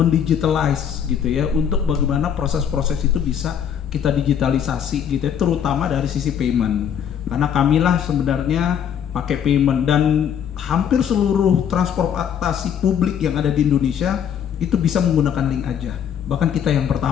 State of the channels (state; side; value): quieter; right; 8.6 dB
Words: gitu ya, untuk bagaimana proses-proses itu bisa kita digitalisasi gitu ya, terutama dari sisi payment. Karena kamilah sebenarnya pakai payment, dan hampir seluruh transportasi publik yang ada di Indonesia itu bisa menggunakan Link Aja. Bahkan kita yang